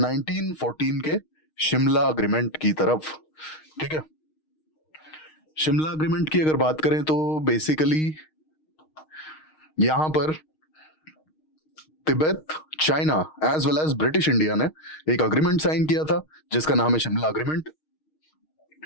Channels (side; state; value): right; late; 6.4 ms